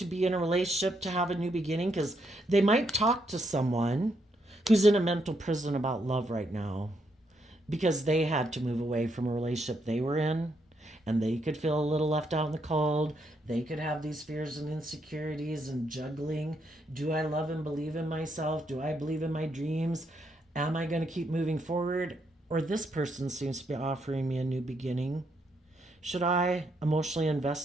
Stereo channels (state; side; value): normal; both; correlation 0.77